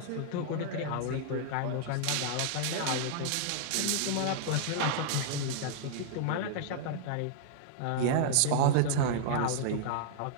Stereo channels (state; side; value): different; both; correlation -0.01